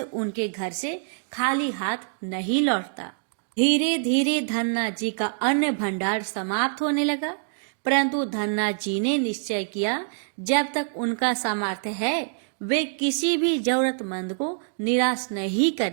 उनके घर से खाली हाथ नहीं लौटता। धीरे धीरे धन्ना जी का अन्न भंडार समाप्त होने लगा, परंतु धन्ना जी ने निश्चय किया जब तक उनका सामर्थ्य है वे किसी भी जरूरतमंद को निराश नहीं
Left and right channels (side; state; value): left; silent; digital silence